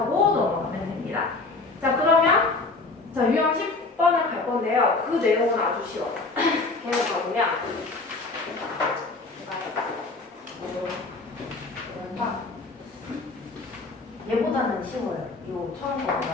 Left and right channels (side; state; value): right; quieter; 3.6 dB